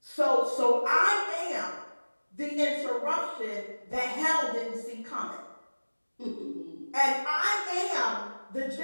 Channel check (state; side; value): inverted; both; correlation -1.00